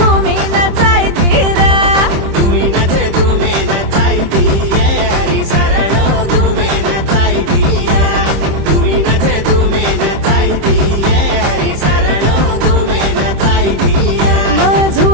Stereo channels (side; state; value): left; late; 26 ms